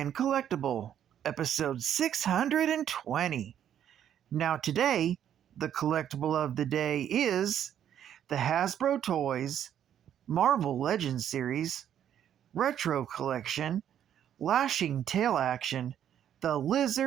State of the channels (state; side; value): quieter; left; 9.9 dB